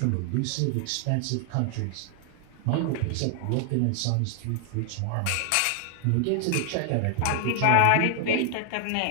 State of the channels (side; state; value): both; different; correlation 0.00